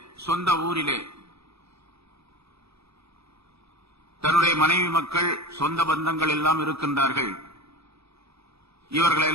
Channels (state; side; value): late; left; 0.78 ms